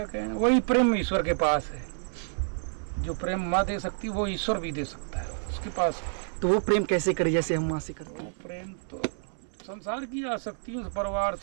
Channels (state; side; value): silent; left; 59 dB below the other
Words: कहना, वही प्रेम ईश्वर के पास है। जो प्रेम माँ दे सकती है वो ईश्वर भी दे सकता है उसके पास। तो वो प्रेम कैसे करे जैसे हम माँ से करते हैं? प्रेम तो संसार की आसक्तियों से, परिवार